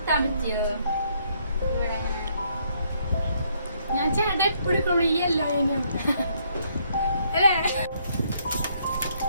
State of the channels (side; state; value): both; inverted; correlation -0.70